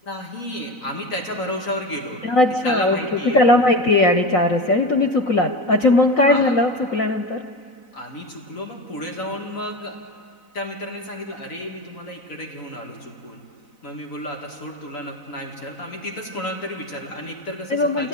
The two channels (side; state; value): right; late; 4.0 ms